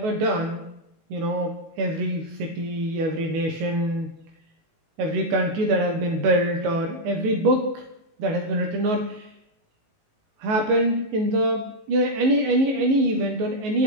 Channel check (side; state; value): left; late; 19 ms